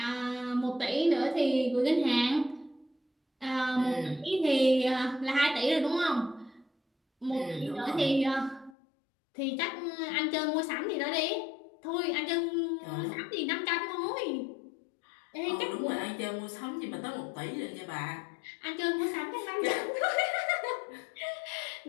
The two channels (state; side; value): drops out; right; at 8.8 s